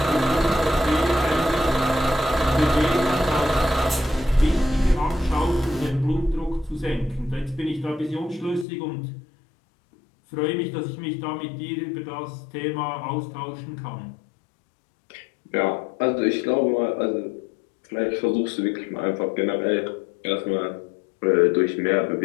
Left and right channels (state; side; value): drops out; right; at 8.7 s